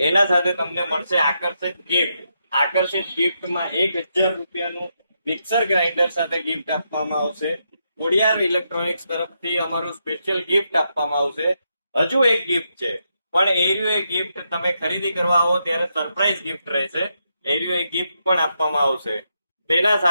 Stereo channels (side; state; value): both; inverted; correlation -0.82